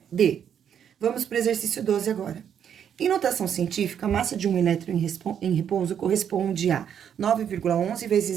D. Vamos para o exercício 12 agora. Em notação científica, a massa de um elétron em repouso corresponde a 9,11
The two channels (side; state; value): left; quieter; 8.7 dB